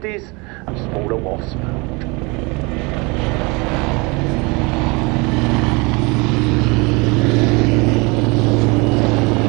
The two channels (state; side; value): quieter; left; 27.5 dB